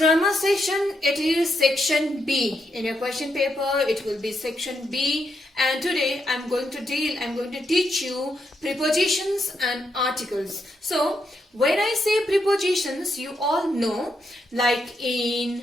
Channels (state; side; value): normal; both; correlation 0.80